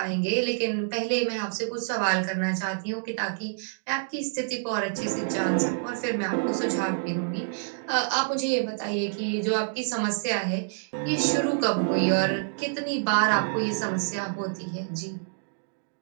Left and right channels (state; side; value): silent; left; digital silence